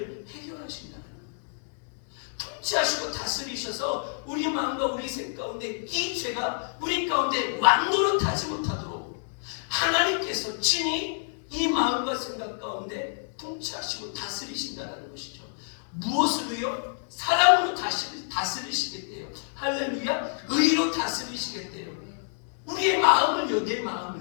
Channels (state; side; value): silent; right; 59 dB below the other